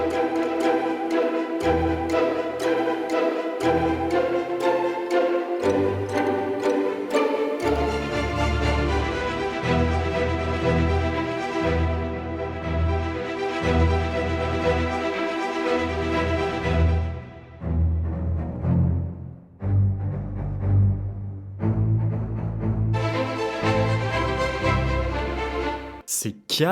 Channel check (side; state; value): both; identical; correlation 1.00